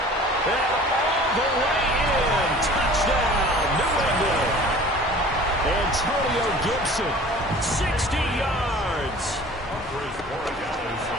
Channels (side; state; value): both; normal; correlation 0.45